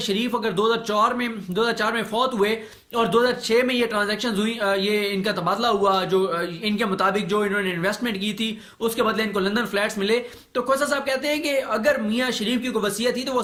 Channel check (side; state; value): both; identical; correlation 1.00